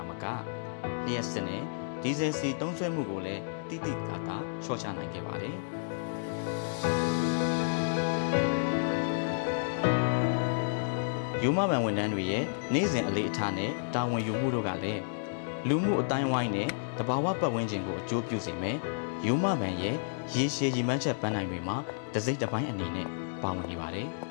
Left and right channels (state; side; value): silent; right; digital silence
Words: မကလျှက်စစ်နဲ့ဒီဇယ်စီသုံးစွဲမှုကိုလည်းတိတိကျကျလျှော့ချနိုင်ခဲ့ပါတယ်။ယူမဘန်ဝန်ထမ်းတွေရဲ့နေ့စဉ်အလေးအထားနဲ့တာဝန်ယူမှုတို့ကလည်းလူမှုအတိုင်းဝိုင်းနဲ့တဘာဝပတ်ဝန်းကျင်ကိုအကျိုးပြုစေမယ်။ယူမဘန်ရဲ့ရေရှည်ရည်မှန်းချက်ပန်းနိုင်တွေမှာတစ်စိတ်တစ်ပိုင်းအနေနဲ့ပါဝင်နေပါတယ်။